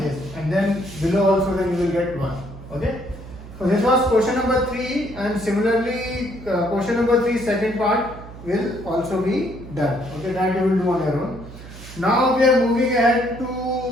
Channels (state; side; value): noise; right; hum, 15 dB below the sound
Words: and then below also then you will get 1. Okay. So this was question number 3, and similarly question number 3 second part will also be done. Okay, that you will do on your own. Now we are moving ahead to